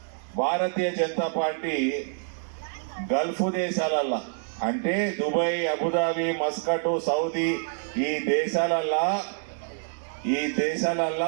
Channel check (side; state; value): left; silent; digital silence